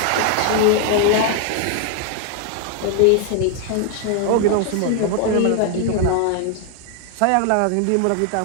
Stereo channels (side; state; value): both; different; correlation 0.00